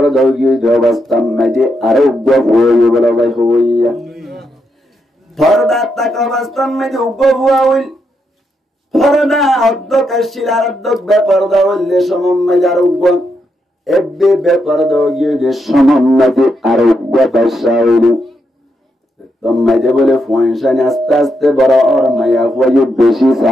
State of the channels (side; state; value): both; normal; correlation 0.81